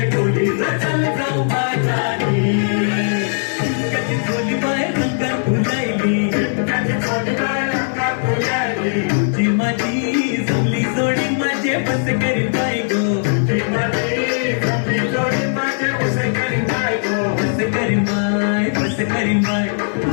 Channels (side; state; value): right; silent; digital silence